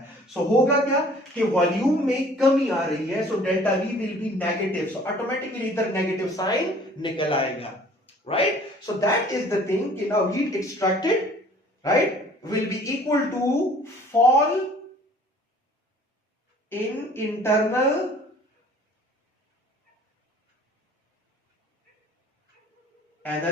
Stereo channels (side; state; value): both; normal; correlation 0.52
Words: सो होगा क्या कि वॉल्यूम में कमी आ रही है, so delta V will be negative, so automatically इधर नेगेटिव साइन निकल आएगा, right. So that is the thing कि now heat extracted, right, will be equal to fall in internal